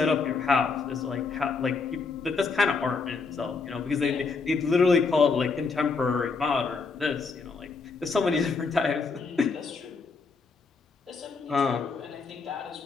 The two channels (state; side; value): quieter; right; 4.6 dB